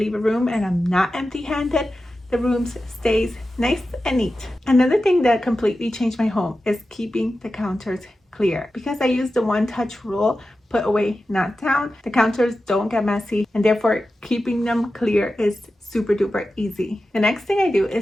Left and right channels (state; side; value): normal; both; correlation 0.92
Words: a room and I'm not empty-handed, the room stays nice and neat. Another thing that completely changed my home is keeping the counters clear. Because I use the one-touch rule, put away, not down, the counters don't get messy, and therefore keeping them clear is super duper easy. The next thing I do